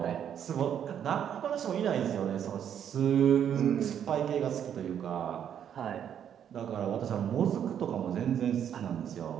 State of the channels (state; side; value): quieter; left; 9.1 dB